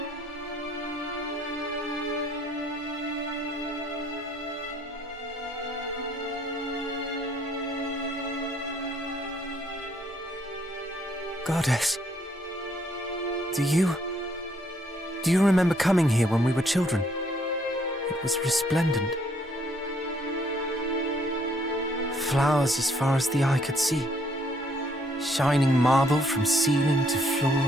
Goddess, do you remember coming here when we were children? It was resplendent. Flowers as far as the eye could see. Shining marble from ceiling to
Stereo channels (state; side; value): normal; both; correlation 0.67